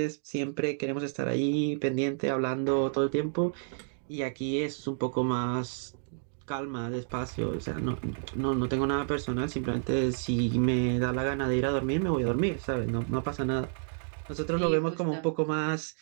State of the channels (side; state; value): left; silent; digital silence